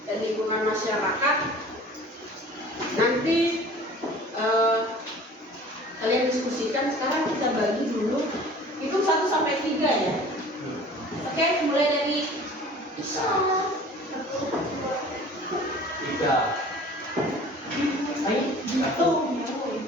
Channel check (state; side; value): normal; both; correlation 0.45